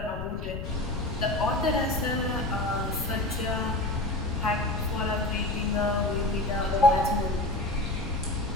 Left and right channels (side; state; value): left; noise; rumble, 7 dB below the sound